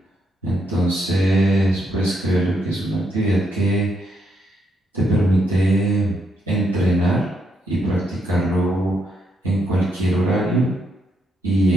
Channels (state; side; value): normal; both; correlation 0.77